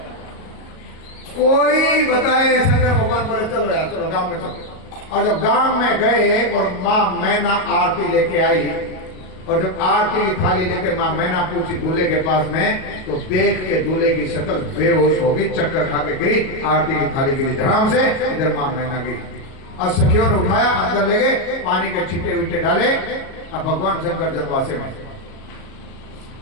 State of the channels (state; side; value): late; right; 37 ms